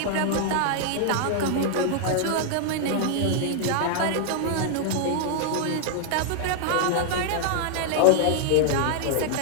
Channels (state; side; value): different; both; correlation 0.00